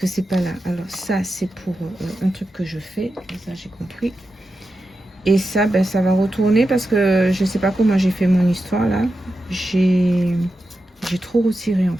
c'est pas là. Alors ça, c'est pour un truc que je fais. Ça, j'ai compris. Et ça, ben, ça va retourner parce que je sais pas comment j'ai fait mon histoire là. J'ai trop retiré en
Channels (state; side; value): normal; both; correlation 0.90